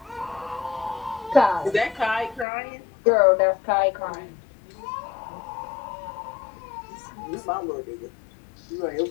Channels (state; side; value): drops out; right; at 2.5 s